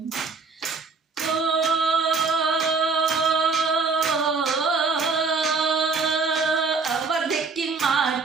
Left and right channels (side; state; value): left; quieter; 4.5 dB